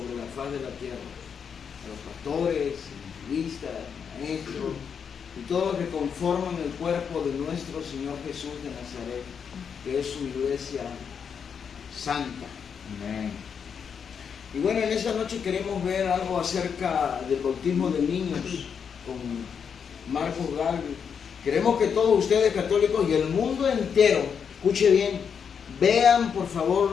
la faz de la tierra, a los pastores, evangelistas, maestros y todos los que conforman el cuerpo de nuestro Señor Jesús de Nazaret, que es su iglesia santa. Amén. Y bueno, en esta noche queremos ver algo acerca del bautismo de niños con Marcos Galvez. Queremos que todos ustedes católicos y el mundo entero, escuche bien, vean por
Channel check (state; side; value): quieter; right; 6.9 dB